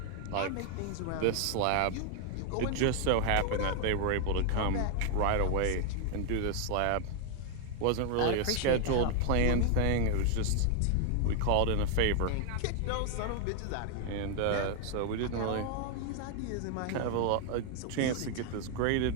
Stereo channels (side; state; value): both; different; correlation 0.00